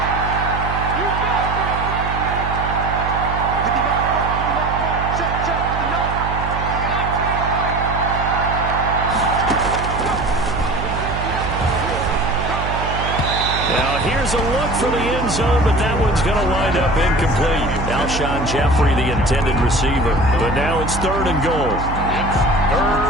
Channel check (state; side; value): noise; right; hum, 5 dB below the sound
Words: Now here's a look for the end zone, but that one's going to wind up incomplete. Alshon Jeffrey, the intended receiver. But now it's third and goal. It's